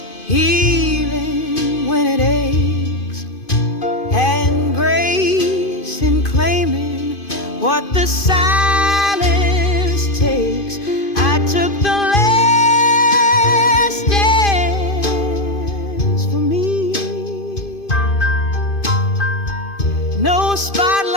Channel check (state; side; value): late; right; 2.5 ms